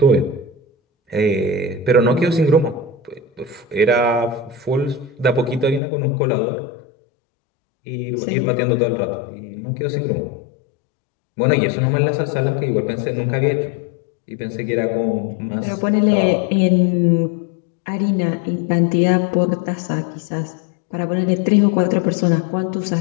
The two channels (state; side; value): drops out; right; at 5.8 s